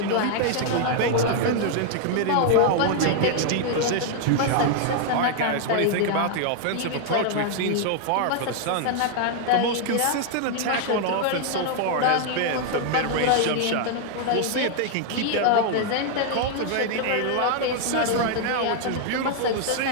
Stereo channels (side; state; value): both; different; correlation 0.00